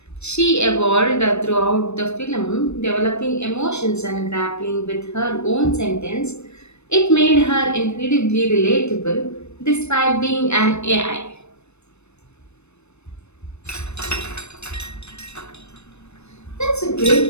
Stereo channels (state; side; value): late; right; 0.81 ms